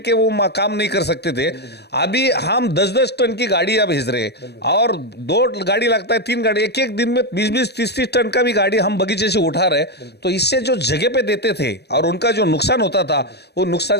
वो काम नहीं कर सकते थे, अभी हम 10-10 टन की गाड़ियां भेज रहे हैं, और 2 गाड़ी लगता है, 3 गाड़ी, एक दिन में 20-20, 30-30 टन का भी गाड़ी हम बगीचे से उठा रहे। तो इससे जो जगह पे देते थे और उनका जो नुकसान होता था, वो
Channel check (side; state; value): right; late; 0.48 ms